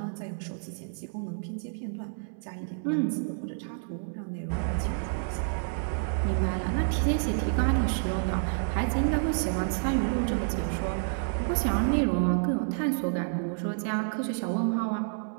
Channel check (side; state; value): left; silent; 58 dB below the other